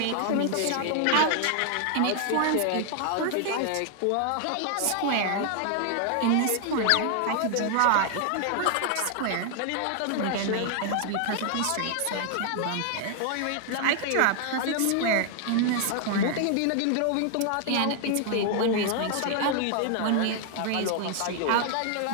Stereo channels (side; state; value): both; different; correlation 0.00